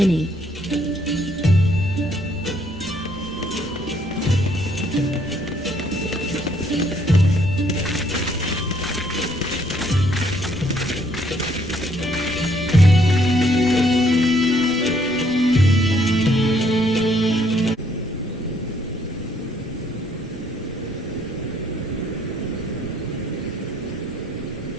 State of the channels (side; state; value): both; normal; correlation 0.67